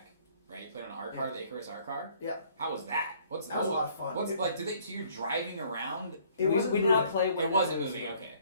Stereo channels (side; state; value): both; inverted; correlation -0.60